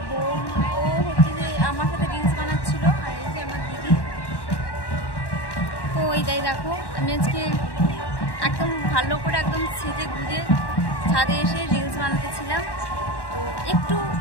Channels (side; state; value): right; late; 1.1 ms